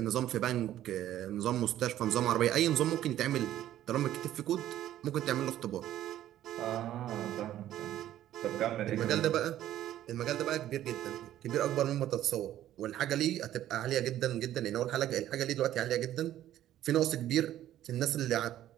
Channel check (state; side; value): quieter; left; 12.6 dB